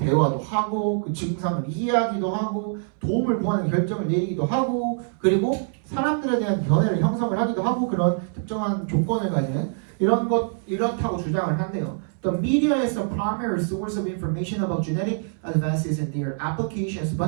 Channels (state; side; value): silent; left; 62 dB below the other